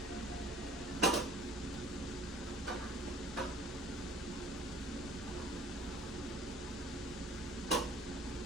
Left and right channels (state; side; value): normal; both; correlation 0.50